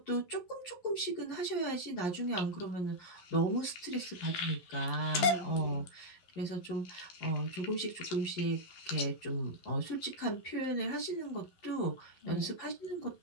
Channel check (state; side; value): late; right; 11 ms